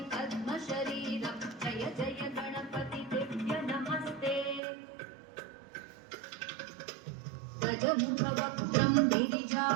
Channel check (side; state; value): left; drops out; at 4.6 s